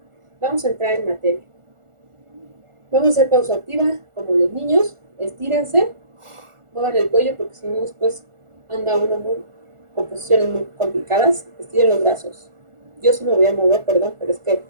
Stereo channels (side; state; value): left; late; 1.4 ms